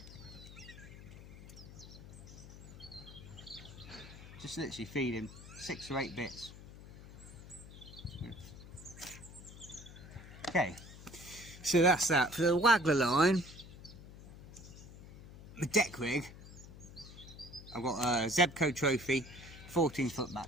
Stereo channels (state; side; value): noise; left; hum, 16 dB below the sound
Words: Just literally feeding 6 or 8 bits. Okay, so that's that. For the Waggler line, the deck rig, I've got a Zebco Trophy 14-foot